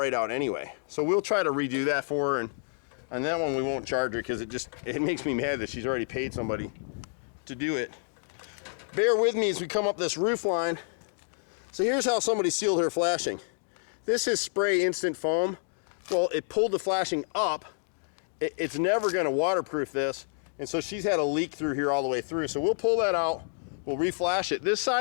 out anyway. So we'll try to redo that for her, and on that one we won't charge her because it makes me mad that she's already paid somebody to do it. Bear with me as we come up this roof line. So here's how somebody sealed her flashing. This is spray instant foam. Well, it pulled the flashing up. It's never gonna waterproof this, and so she's had a leak through here all the way through. So we'll pull that out, we'll reflash it. This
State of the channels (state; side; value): silent; right; digital silence